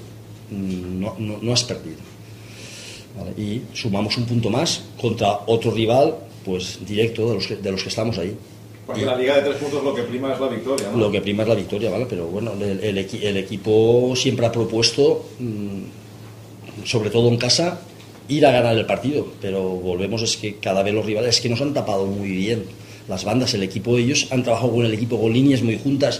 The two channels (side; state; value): both; identical; correlation 1.00